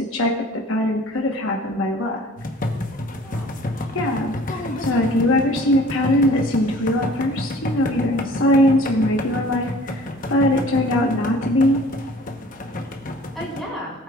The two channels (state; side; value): normal; both; correlation 0.49